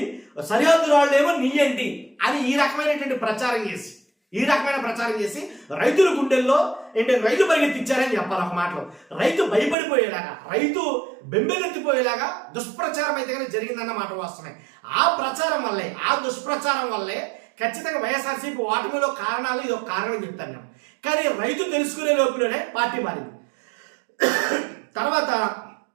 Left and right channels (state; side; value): drops out; left; at 9.8 s